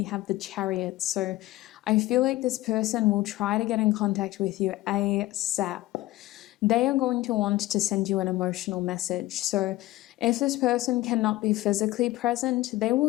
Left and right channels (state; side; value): quieter; right; 17.3 dB